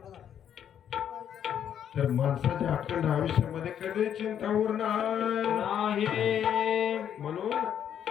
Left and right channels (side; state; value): right; quieter; 9.3 dB